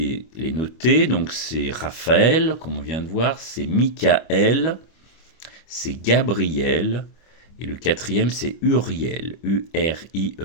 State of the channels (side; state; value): right; late; 25 ms